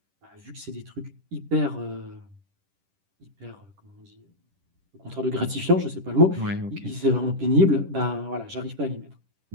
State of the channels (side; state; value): left; late; 10 ms